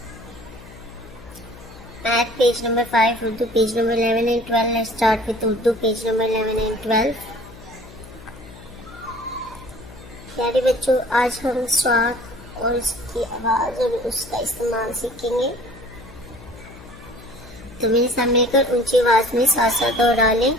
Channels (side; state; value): left; noise; hum, 18 dB below the sound